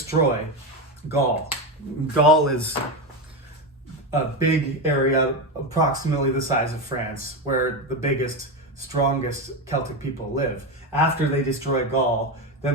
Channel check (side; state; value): both; normal; correlation 0.14